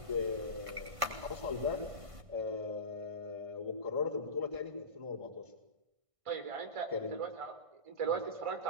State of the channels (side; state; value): left; late; 1.5 ms